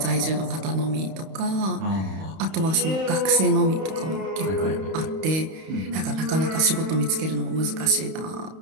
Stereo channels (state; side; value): late; left; 31 ms